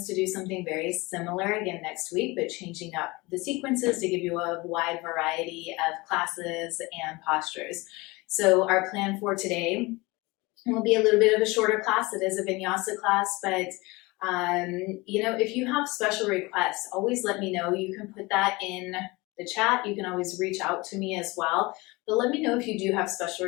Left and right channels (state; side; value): quieter; right; 23.5 dB